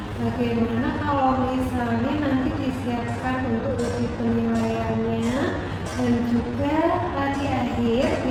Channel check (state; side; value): identical; both; correlation 1.00